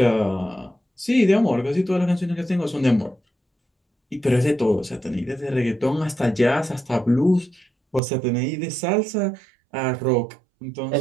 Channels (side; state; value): left; drops out; at 8.0 s